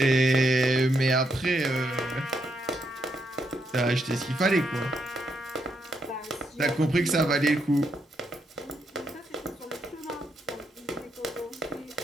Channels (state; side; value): normal; both; correlation 0.79